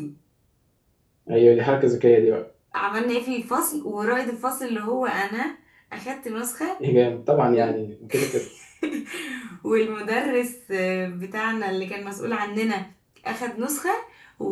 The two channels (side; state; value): both; identical; correlation 1.00